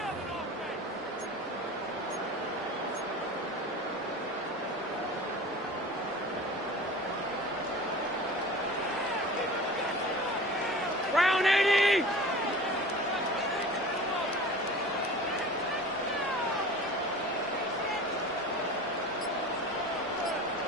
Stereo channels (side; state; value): both; normal; correlation 0.38